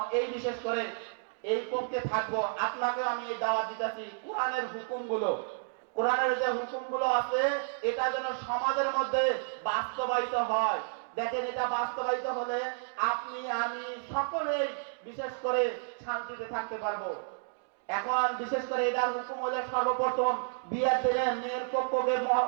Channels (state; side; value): silent; left; digital silence